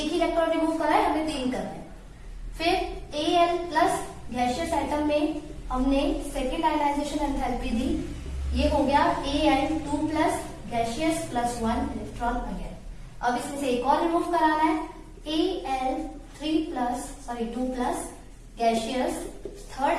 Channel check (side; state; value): both; identical; correlation 1.00